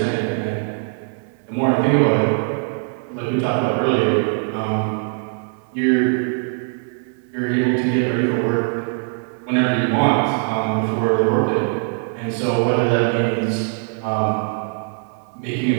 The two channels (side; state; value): left; silent; 55 dB below the other